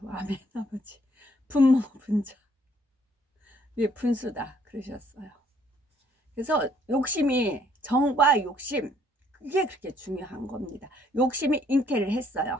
아멘 아버지. 분모 분자 분수다 그러셨어요. 그래서 욕심이 정과 욕심 그게 그렇게 중요한 겁니다. 욕심이 잉태를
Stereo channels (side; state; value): both; normal; correlation 0.65